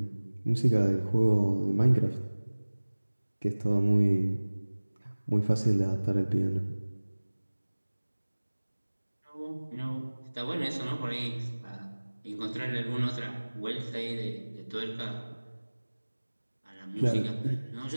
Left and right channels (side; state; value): both; inverted; correlation -1.00